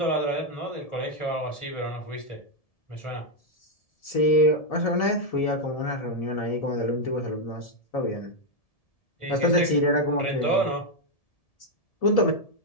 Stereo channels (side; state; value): right; late; 1.7 ms